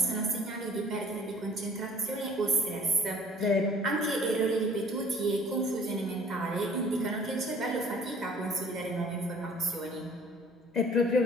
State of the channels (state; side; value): normal; both; correlation 0.53